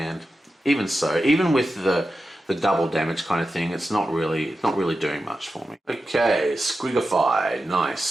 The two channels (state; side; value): normal; both; correlation 0.91